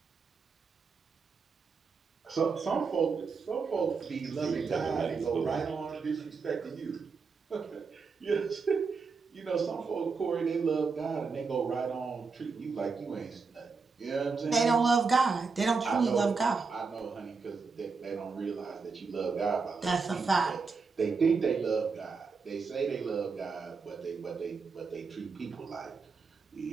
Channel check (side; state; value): left; quieter; 4.8 dB